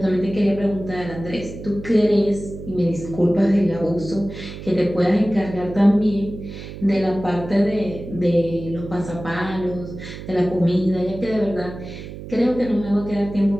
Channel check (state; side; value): noise; right; hum, 12 dB below the sound